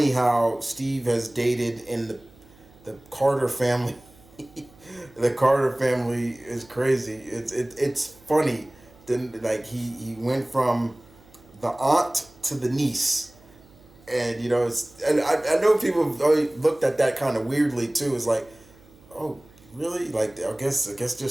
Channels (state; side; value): noise; right; hum, 26 dB below the sound